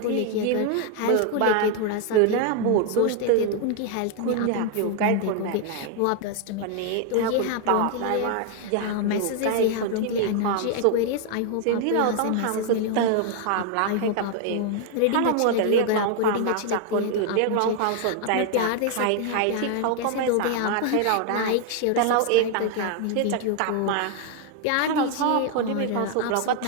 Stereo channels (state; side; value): different; both; correlation 0.00